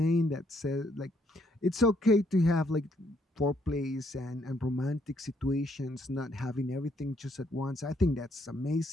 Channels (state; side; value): normal; both; correlation 0.71